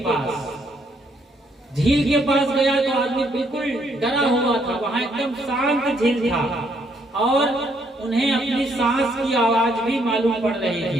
पास। झील के पास गया तो आदमी बिल्कुल डरा हुआ था। वहां एकदम शांत झील था और उन्हें अपनी सांस की आवाज भी मालूम पड़ रही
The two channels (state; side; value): normal; both; correlation 0.71